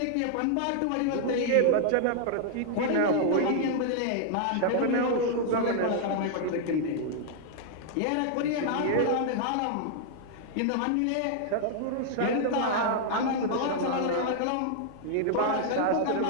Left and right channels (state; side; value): different; both; correlation -0.01